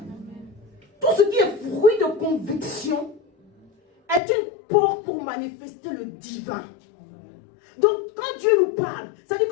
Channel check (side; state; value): right; drops out; at 4.2 s